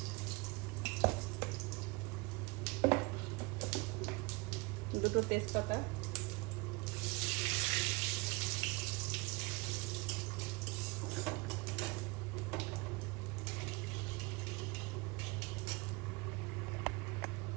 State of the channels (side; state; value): left; quieter; 26.0 dB